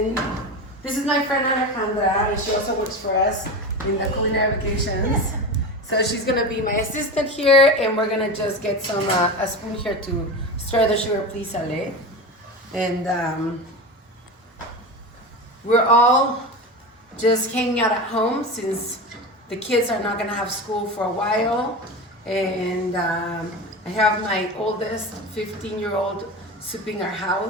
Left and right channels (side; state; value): both; normal; correlation 0.25